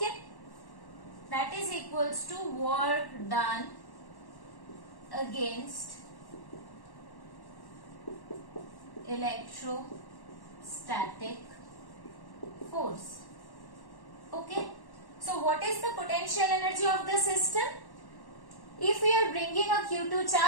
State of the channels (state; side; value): late; right; 1.1 ms